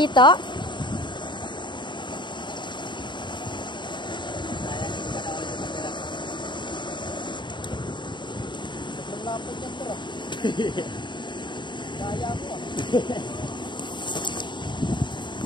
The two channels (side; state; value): right; late; 0.22 ms